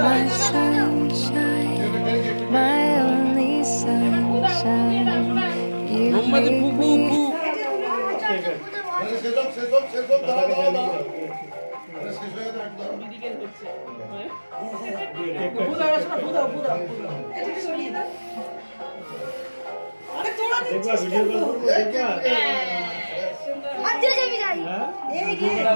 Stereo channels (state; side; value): inverted; both; correlation -1.00